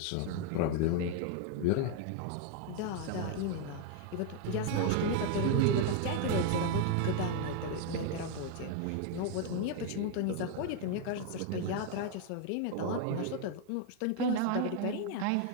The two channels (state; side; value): different; both; correlation 0.01